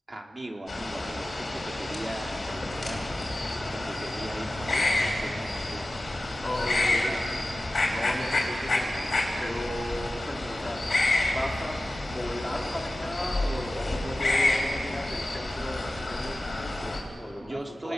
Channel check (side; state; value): both; normal; correlation 0.96